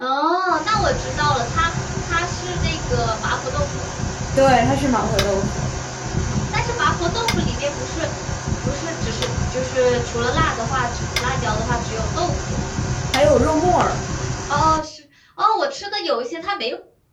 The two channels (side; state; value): both; identical; correlation 1.00